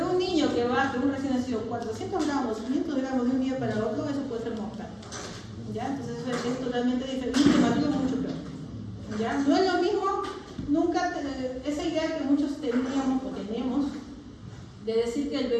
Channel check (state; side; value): identical; both; correlation 1.00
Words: un niño que baje, un recién nacido, 400 gramos, 500 gramos de un día para otro, eso puede ser mortal, ¿ya? Entonces eso es totalmente diferente, mucho peor, ¿ya? No es lo mismo, nunca, esa idea que muchos teníamos o tenemos, de decir